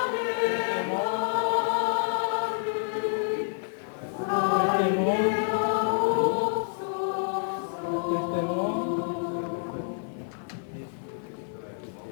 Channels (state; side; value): silent; right; digital silence